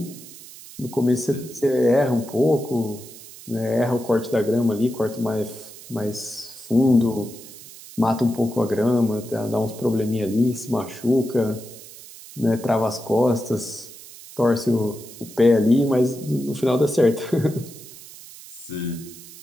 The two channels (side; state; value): right; noise; hiss, 17 dB below the sound